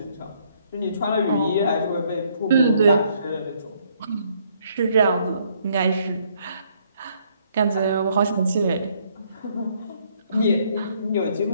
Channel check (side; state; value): both; inverted; correlation -0.68